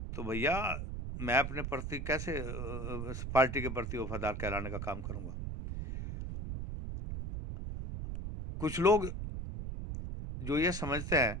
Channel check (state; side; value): noise; right; rumble, 5 dB below the sound